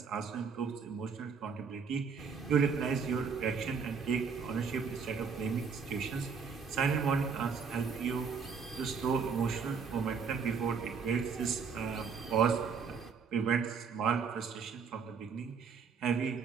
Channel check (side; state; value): left; quieter; 5.9 dB